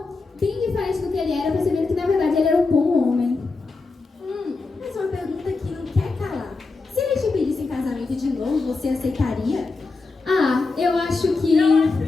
bem diferente do que ele era, percebendo que na verdade ele era um bom homem. Mas uma pergunta que não quer calar. Se ele te pedisse em casamento de novo, você aceitaria? Eu acho que... Eu acho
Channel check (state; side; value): quieter; right; 3.9 dB